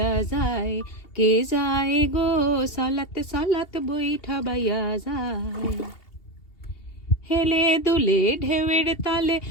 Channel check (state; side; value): late; right; 2.7 ms